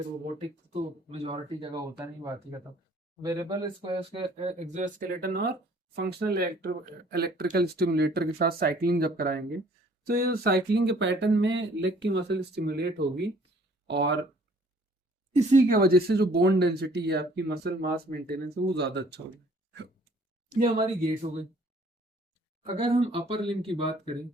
रोबोटिक तो मेजोरिटी जगह होता नहीं, बात ही खत्म। वेरिएबल एक्सोस्केलेटन और फंक्शनल इलेक्ट्रिकल स्टिमुलेटर के साथ साइकिलिंग जब कराएंगे तो ये साइकिलिंग के पैटर्न में लेग की मसल स्टिमुलेट होगी और इसी के वजह से जो बोन डेंसिटी है आपकी, मसल मास मेंटेनेंस है, वो ज्यादा अच्छा होगा। ये हमारी गेट हो गई। अगर हम अपर लिम्ब की बात करें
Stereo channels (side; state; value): both; normal; correlation 0.57